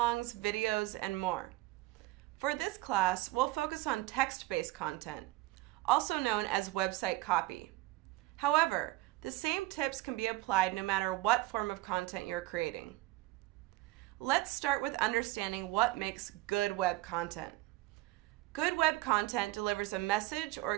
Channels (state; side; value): quieter; left; 18.2 dB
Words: videos, and more. For this class, we'll focus on text-based content, also known as website copy. However, the same tips can be applied no matter what form of content you're creating. Let's start with understanding what makes good web content. Good web content delivers a message or